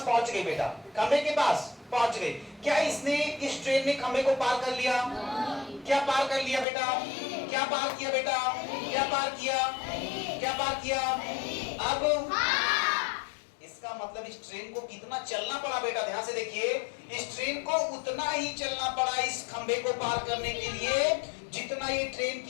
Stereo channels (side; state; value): right; drops out; at 6.7 s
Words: पहुंच गई बेटा, खंभे के पास पहुंच गई। क्या इसने, इस ट्रेन ने खंभे को पार कर लिया? क्या पार कर लिया बेटा? क्या पार किया बेटा? क्या पार किया? अब इसका मतलब इस ट्रेन को कितना चलना पड़ा बेटा? ध्यान से देखिए, इस ट्रेन को उतना ही चलना पड़ा इस खंभे को पार करने के लिए जितना ये ट्रेन